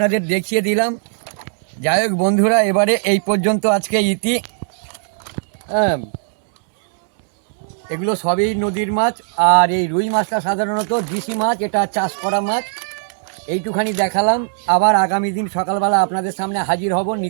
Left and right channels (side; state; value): left; silent; 67 dB below the other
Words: দেখিয়ে দিলাম। যাই হোক বন্ধুরা, এবারে এই পর্যন্ত আজকে ইতি। হ্যাঁ, এগুলো সবই নদীর মাছ। আর এই রুই মাছটা সাধারণত দেশি মাছ, এটা চাষ করা মাছ। এইটুখানি দেখালাম। আবার আগামী দিন সকালবেলা আপনাদের সামনে হাজির হব